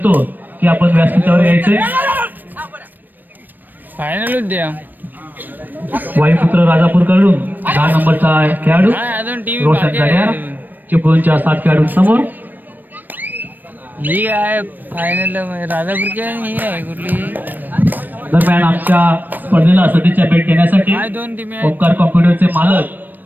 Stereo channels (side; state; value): left; late; 0.090 ms